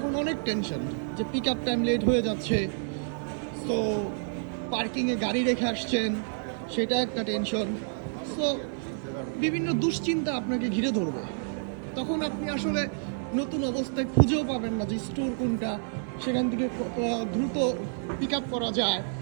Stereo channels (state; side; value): silent; left; 56 dB below the other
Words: অনেক টেনশন যে পিক আপ টাইম লেট হয়ে যাচ্ছে, সো পার্কিংয়ে গাড়ি রেখে আসছেন, সেটা একটা টেনশন। সো বিভিন্ন দুশ্চিন্তা আপনাকে ঘিরে ধরবে। তখন আপনি আসলে নতুন অবস্থায় খুঁজেও পাবেন না যে স্টোর কোনটা, সেখান থেকে দ্রুত পিক আপ করা যায়।